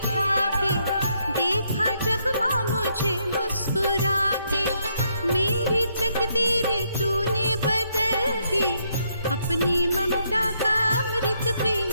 के, देखा जब माँ मुझे मुस्कुरा के। मेरी तकदीर तूने बदल दी, अपनी ममता का अमृत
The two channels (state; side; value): inverted; both; correlation -0.75